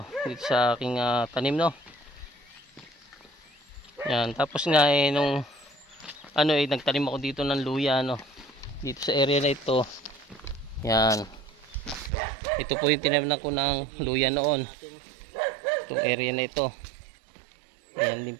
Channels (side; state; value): left; drops out; at 12.1 s